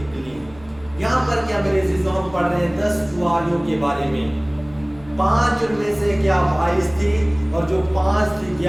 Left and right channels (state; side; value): noise; right; hum, 23 dB below the sound